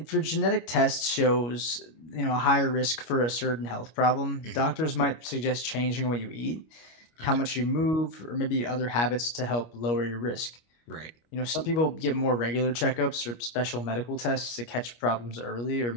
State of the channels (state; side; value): late; right; 25 ms